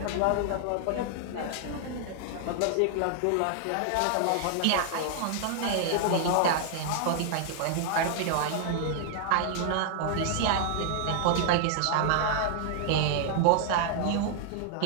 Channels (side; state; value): both; different; correlation 0.00